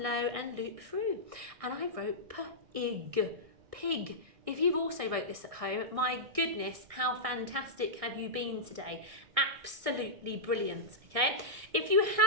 low, and loop through. And I wrote p-ig, pig. If you've also wrote this at home, my goodness, how fantastic have you been today? Absolutely brilliant, okay? If you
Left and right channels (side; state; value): left; late; 1.6 ms